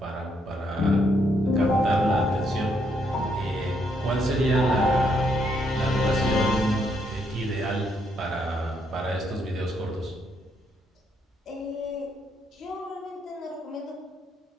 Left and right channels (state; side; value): normal; both; correlation 0.74